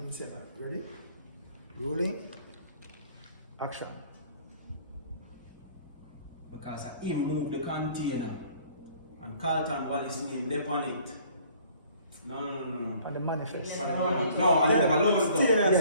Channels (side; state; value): both; inverted; correlation -0.55